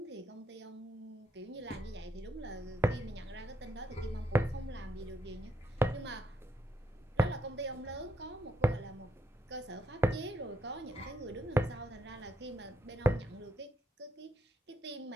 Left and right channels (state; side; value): normal; both; correlation 0.78